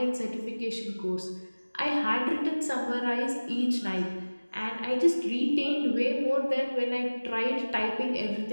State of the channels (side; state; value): both; inverted; correlation -1.00